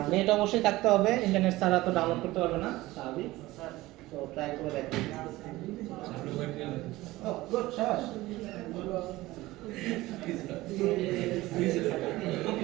নেট অবশ্যই থাকতে হবে, ইন্টারনেট ছাড়া তো ডাউনলোড করতে পারবে না, স্বাভাবিক। তো ট্রাই করে দেখেন। ও গুড, শাবাশ।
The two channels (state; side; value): quieter; left; 18.4 dB